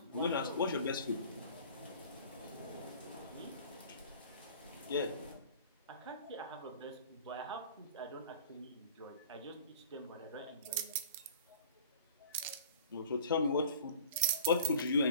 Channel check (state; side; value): inverted; both; correlation -0.46